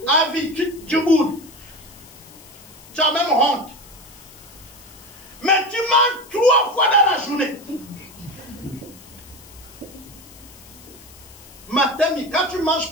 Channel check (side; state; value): left; noise; hiss, 21 dB below the sound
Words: à vie. Tu boudes. Tu as même honte. Mais tu manges 3 fois dans la journée. Matin, quand tu ne manges